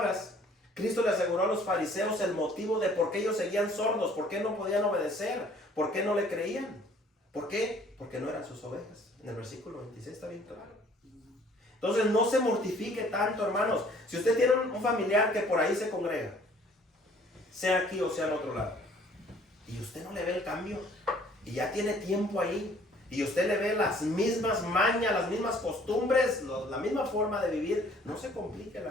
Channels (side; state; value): both; normal; correlation 0.57